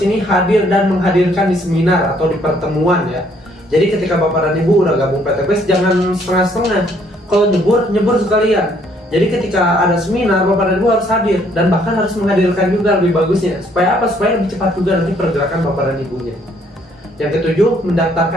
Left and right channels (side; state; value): both; normal; correlation 0.65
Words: hadir dan menghadirkan di seminar atau di pertemuan ya. Jadi ketika Bapak dan Ibu udah gabung PTBS jangan setengah-setengah. Kalau nyebur sekalian. Jadi ketika ada seminar Bapak dan Ibu harus hadir dan bahkan harus menghadirkan juga lebih bagusnya. Supaya apa? Supaya lebih cepat juga nanti pergerakan Bapak dan Ibunya. Yang ketujuh,